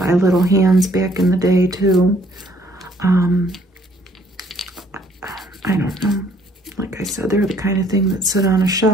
little hands back in the day too. I don't know. Like I said, they're the kind of thing that sit on a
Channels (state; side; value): normal; both; correlation 0.63